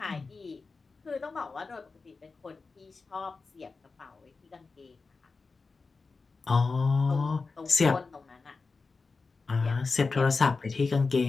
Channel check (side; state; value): right; quieter; 4.2 dB